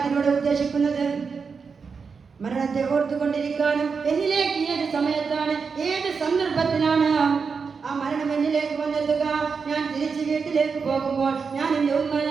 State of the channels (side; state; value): left; quieter; 5.4 dB